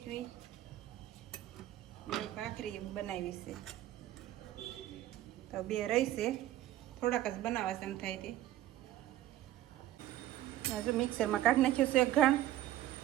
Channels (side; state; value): left; quieter; 13.7 dB